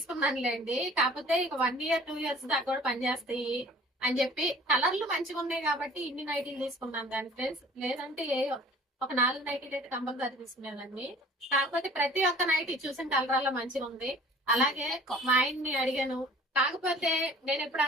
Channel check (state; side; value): normal; both; correlation 0.48